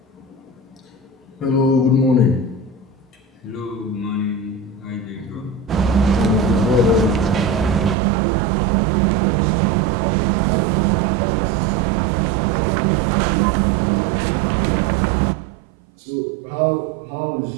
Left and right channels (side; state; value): left; drops out; at 8.0 s